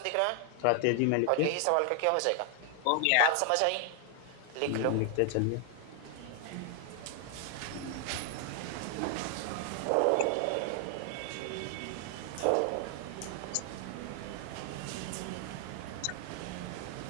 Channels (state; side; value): different; both; correlation 0.00